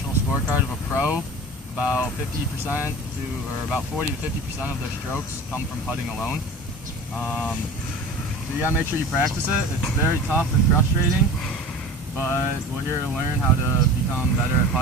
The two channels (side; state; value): both; normal; correlation 0.37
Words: scorecard of a pro, about 50% or about 40 to 50% of their strokes come from putting alone. So you gotta make sure you practice it. It's very tough and frustrating, but we're here to learn how to become better at